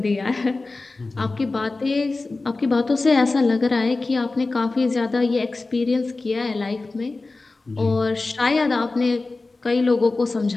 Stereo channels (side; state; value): right; quieter; 3.4 dB